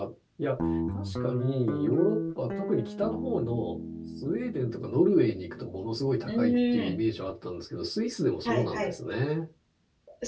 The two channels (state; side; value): identical; both; correlation 1.00